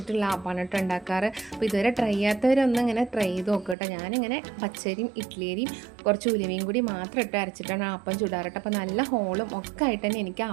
ആപ്പാണ് കേട്ടോ ഉണ്ടാക്കാറ്. അപ്പോൾ ഇതുവരെ ട്രൈ ചെയ്യാത്തവരൊന്നും ഇങ്ങനെ ട്രൈ ചെയ്ത് നോക്കുക കേട്ടോ. ഞാനിങ്ങനെ പച്ചരിയും ഇഡ്ഡലിയും കുറച്ച് ഉലുവയും കൂടി മാത്രം ഇട്ട് അരച്ചിട്ടാണ് ആപ്പം ചുടാറ്. അപ്പോൾ നല്ല ഹോളും ഒക്കെ ആയിട്ട് തന്നെ എനിക്ക്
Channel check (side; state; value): left; drops out; at 3.8 s